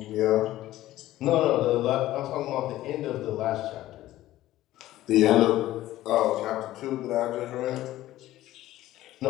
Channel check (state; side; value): quieter; right; 15.0 dB